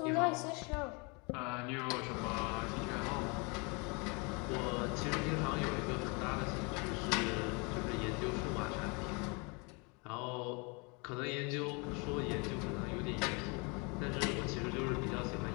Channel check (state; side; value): quieter; right; 31.1 dB